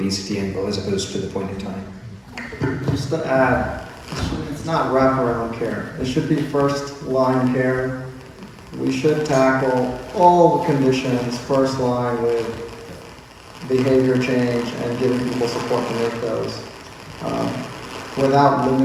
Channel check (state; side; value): identical; both; correlation 1.00